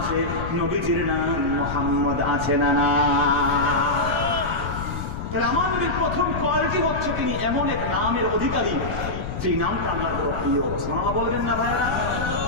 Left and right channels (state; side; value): noise; left; rumble, 6 dB below the sound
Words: নবীজির নাম মুহাম্মদ আছে না না? তাহলে আমার নবীর প্রথম কোয়ালিটি হচ্ছে তিনি এমন এক নামের অধিকারী যে নামটা আল্লাহর বড় প্রিয়। সুবহানাল্লাহ বলবেন না ভাইরা?